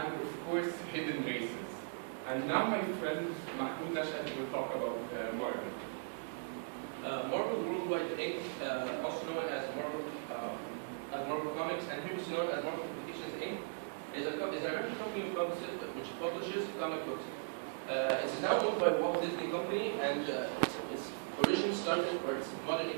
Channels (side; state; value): left; silent; digital silence